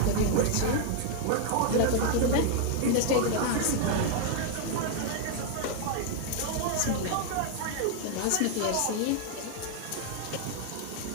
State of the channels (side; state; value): both; different; correlation 0.00